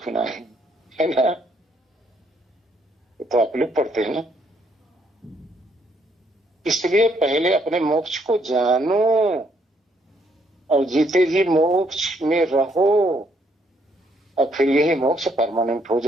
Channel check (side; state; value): both; normal; correlation 0.70